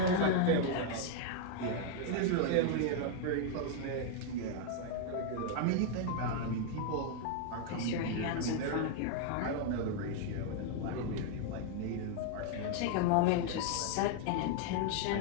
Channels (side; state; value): both; different; correlation 0.00